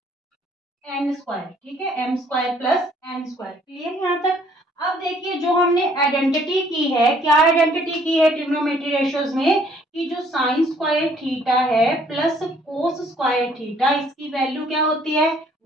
N square, ठीक है, M square plus N square. Clear यहाँ तक? अब देखिए जो हमने आइडेंटिटी की है, क्या आइडेंटिटी की है ट्रिग्नोमेट्री रेशियोज में, कि जो साइन स्क्वायर थीटा है प्लस कोस स्क्वायर थीटा, इसकी वैल्यू क्या होती है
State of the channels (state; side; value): normal; both; correlation 0.62